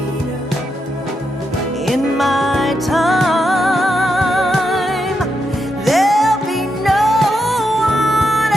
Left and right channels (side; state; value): both; normal; correlation 0.83